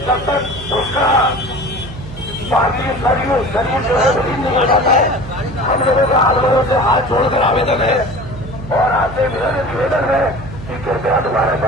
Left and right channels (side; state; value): right; noise; hum, 13 dB below the sound